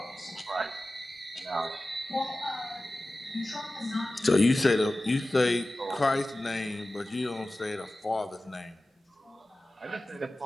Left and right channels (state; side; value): normal; both; correlation 0.96